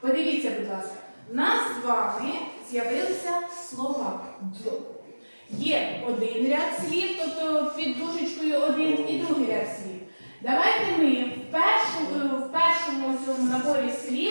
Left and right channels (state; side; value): inverted; both; correlation -1.00